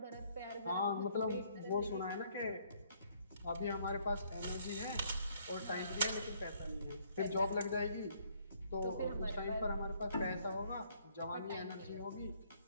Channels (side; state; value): both; inverted; correlation -0.66